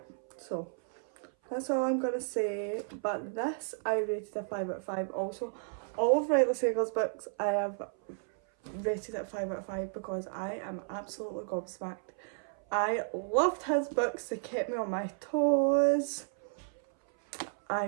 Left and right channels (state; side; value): silent; left; 56 dB below the other